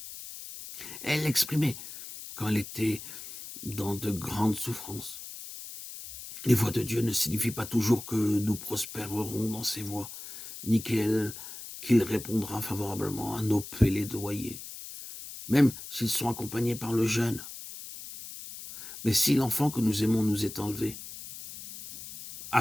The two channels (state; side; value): noise; left; hiss, 12 dB below the sound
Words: Elle l'exprimait quand elle était dans de grandes souffrances. Les voies de Dieu ne signifient pas toujours que nous prospérerons dans ses voies, ni qu'il répondra favorablement à nos plaidoyers, même s'ils sont accompagnés par le jeûne. Mais si l'enfant que nous aimons nous est enlevé,